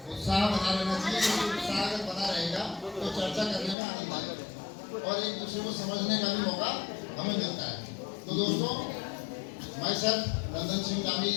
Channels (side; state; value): right; drops out; at 3.8 s